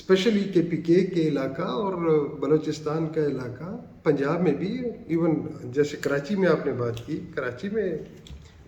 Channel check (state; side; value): identical; both; correlation 1.00